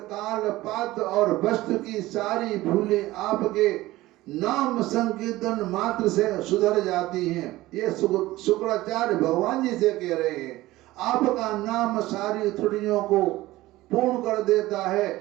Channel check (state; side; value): quieter; left; 17.6 dB